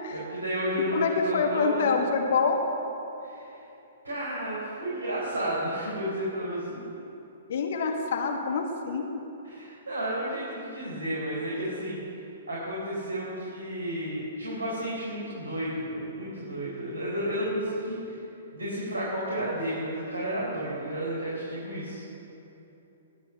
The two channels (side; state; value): both; inverted; correlation -0.50